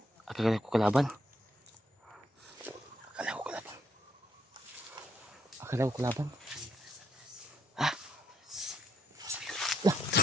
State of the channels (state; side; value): normal; both; correlation 0.73